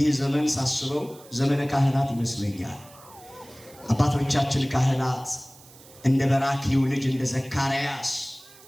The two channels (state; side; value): noise; right; hiss, 23 dB below the sound